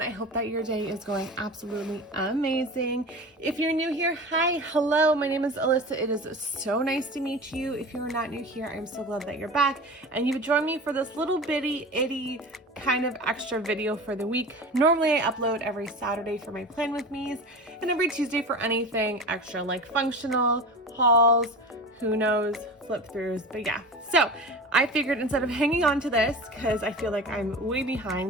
I hope that your day is going absolutely amazing. If you're new here, hi, hello. My name is Alyssa. It is so nice to meet you. If you're not new here, I'm so glad that you're back and you've joined me for this little bitty itty kind of extra video for the week. Normally I upload every Saturday for my plan with me's and every Tuesday for anything extra like functional, hauls, who knows, flip throughs, but yeah. So I figured instead of hanging on to this, because I feel like I'm way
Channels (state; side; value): normal; both; correlation 0.32